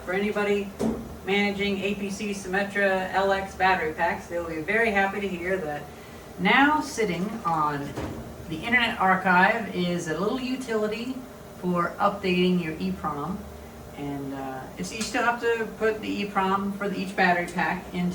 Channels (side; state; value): both; identical; correlation 1.00